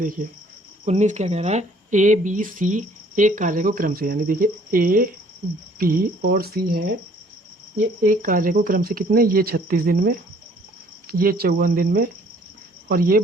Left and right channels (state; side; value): normal; both; correlation 0.58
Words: 19 क्या कह रहा है, ए बी सी एक कार्य को क्रम से, यानी देखिए ए बी और सी है, ये एक कार्य को क्रम से कितने, ये 36 दिन में, ये 54 दिन में और ये